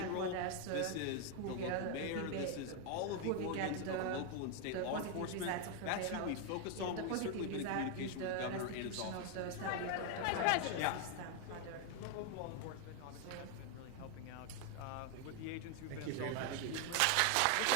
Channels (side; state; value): both; different; correlation 0.01